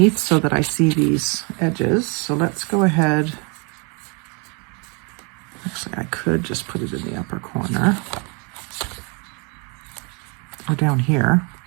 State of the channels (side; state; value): left; quieter; 33.0 dB